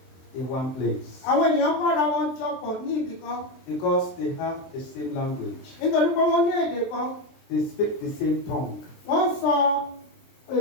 in one place àwọn ènìyàn kọ́ra wọn jọpọ̀ ní ibì kan because they have the same language. nítorí pé wọ́n ní èdè kan, They speak the same tongue wọ́n sọ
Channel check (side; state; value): right; late; 23 ms